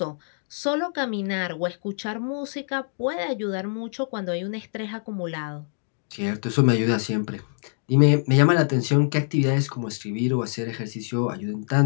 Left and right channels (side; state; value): right; silent; digital silence